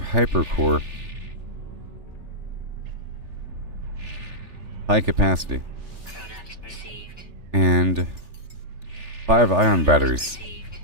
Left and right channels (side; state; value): left; late; 3.4 ms